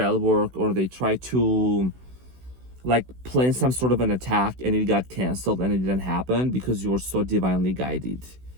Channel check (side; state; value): left; late; 16 ms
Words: work, or they try to like plan some sort of an attack, and it got canceled and it didn't happen because you're so divinely guided.